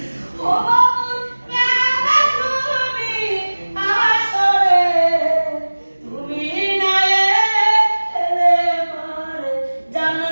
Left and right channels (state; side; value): inverted; both; correlation -1.00